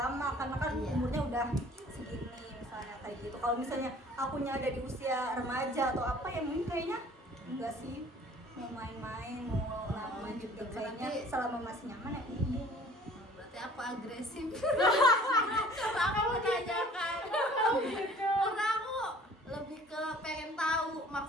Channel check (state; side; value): normal; both; correlation 0.52